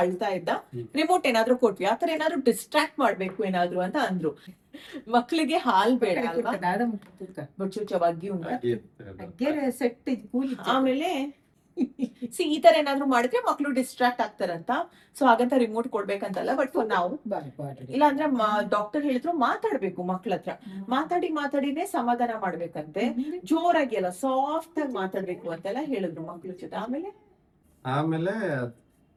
ಅಳ್ತಾ ಇದ್ದ, ರಿಮೋಟ್ ಏನಾದ್ರು ಕೊಟ್ವಿ, ಆತರ ಏನಾದ್ರು ಡಿಸ್ಟ್ರಾಕ್ಟ್ ಮಾಡ್ಬೇಕು ಏನಾದ್ರು ಅಂತ ಅಂದ್ರು. ಮಕ್ಳಿಗೆ ಹಾಲ್ ಬೇಡ ಅಲ್ವಾ, ಬಚ್ಚುಚ್ಚವಾಗಿ ಸೆಟ್ ಕೂಲಿ. ಆಮೇಲೆ ಸಿ ಈ ತರ ಏನಾದ್ರು ಮಾಡಿದ್ರೆ ಮಕ್ಳು ಡಿಸ್ಟ್ರಾಕ್ಟ್ ಆಗ್ತಾರಂತ. ಸೊ ಹಾಗಂತ ರಿಮೋಟ್ ಕೊಡ್ಬೇಕಂತಲ್ಲ, ಬಟ್ ನಾವು ಇಲ್ಲಾಂದ್ರೆ ಡಾಕ್ಟರ್ ಹೇಳಿದ್ರು ಮಾತಾಡ್ಬೇಕು ಮಕ್ಳ ಹತ್ರ, ಮಾತಾಡಿನೇ ಸಮಾಧಾನ ಮಾಡ್ಬೇಕಂತೆ. ಜೋರಾಗಿ ಅಲ್ಲ, ಸಾಫ್ಟ್ ಆಗಿ ಮಾತಾಡ್ಬೇಕು ಅಂತೆಲ್ಲ ಹೇಳಿದ್ರು ಮಕ್ಳ ಜೊತೆ. ಆಮೇಲೆ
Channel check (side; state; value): both; identical; correlation 1.00